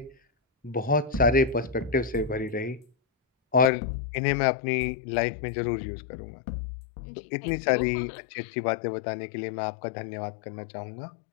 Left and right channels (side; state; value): right; drops out; at 3.7 s